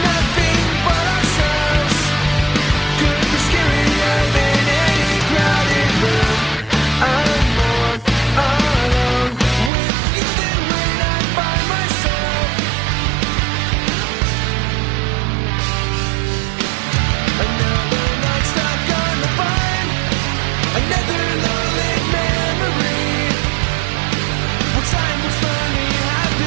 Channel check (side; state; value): left; drops out; at 9.7 s